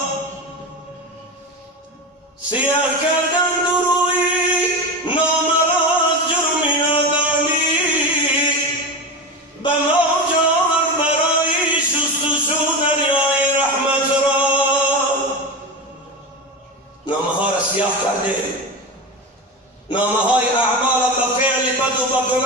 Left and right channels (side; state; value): both; normal; correlation 0.23